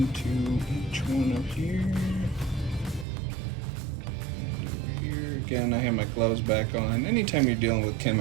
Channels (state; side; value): drops out; left; at 3.1 s